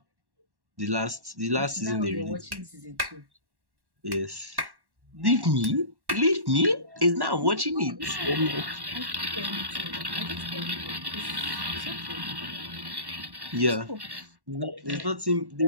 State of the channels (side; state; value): left; late; 1.1 ms